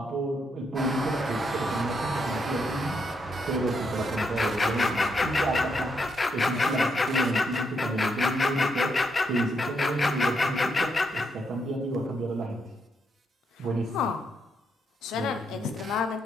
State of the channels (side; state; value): both; normal; correlation 0.78